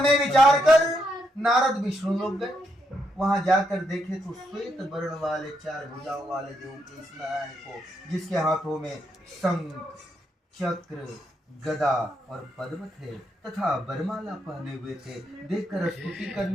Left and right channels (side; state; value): both; normal; correlation 0.79